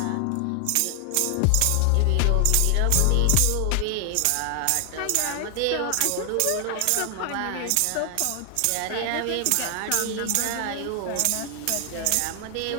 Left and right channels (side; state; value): both; different; correlation 0.00